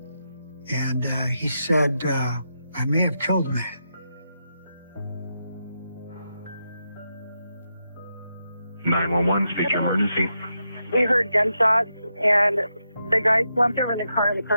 And he said, I may have killed a man. Speak emergency. We heard gunshots, and the guy slumped over in the car and the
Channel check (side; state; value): both; inverted; correlation -0.85